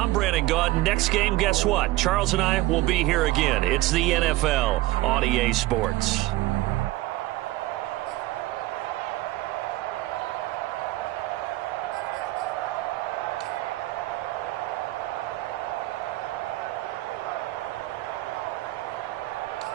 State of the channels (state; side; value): quieter; left; 17.7 dB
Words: Brandon Gaudin. Next game, guess what? Charles and I will be here again. It's the NFL on EA Sports.